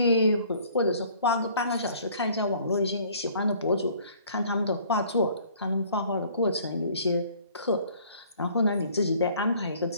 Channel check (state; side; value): inverted; both; correlation -0.56